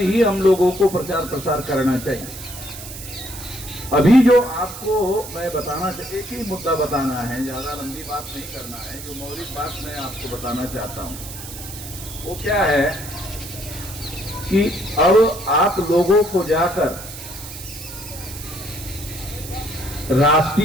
हम लोगों को प्रचार प्रसार करना चाहिए। अभी जो आपको मैं बताना चाहिए, एक ही मुद्दा बताना है, ज्यादा लंबी बात नहीं करना है। जो मौलिक बात मैं आपको बताना चाहता हूं वो क्या है कि अब आप लोगों को जाकर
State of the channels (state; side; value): noise; right; hiss, 12 dB below the sound